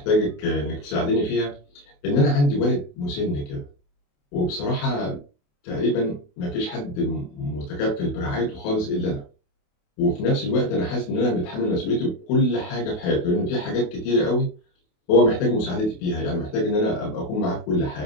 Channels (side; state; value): right; late; 28 ms